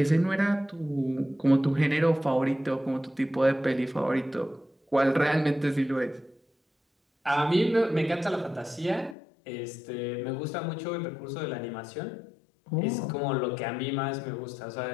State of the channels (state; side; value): drops out; right; at 9.2 s